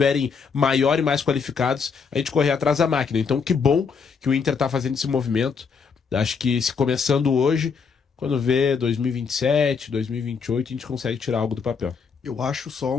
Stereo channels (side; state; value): right; quieter; 5.7 dB